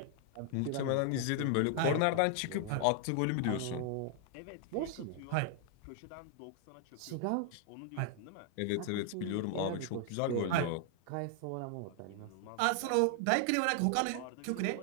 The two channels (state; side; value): different; both; correlation 0.00